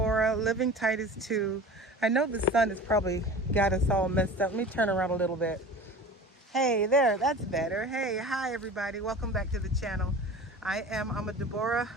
living Titus 2. I know the sun has probably got us all messed up. Let me turn around a little bit. Hey there, that's better. Hey, hi everybody. Welcome back to the channel. I'm a Deborah,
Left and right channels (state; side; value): normal; both; correlation 0.37